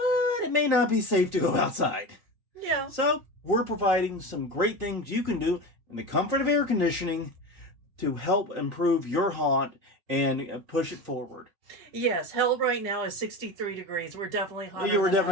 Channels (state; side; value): late; left; 5.3 ms